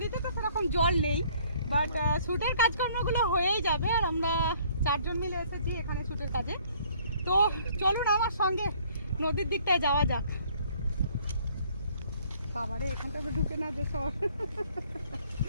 তো সেরকম জল নেই, বাট শুটের কাজকর্মগুলো হয়েই যাবে। আর আমরা 4 জন মিলে এসেছি এখানে শুটের কাজে। তো চলুন আমার সঙ্গে নদীর দিকটায় যাওয়া যাক। বাবারে, এখানটা তো ঢুকে না যে সব।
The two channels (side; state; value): both; inverted; correlation -0.60